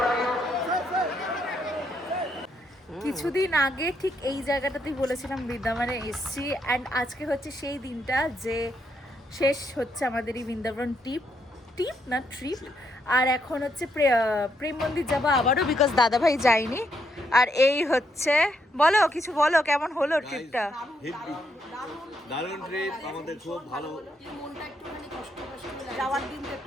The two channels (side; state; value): both; normal; correlation 0.77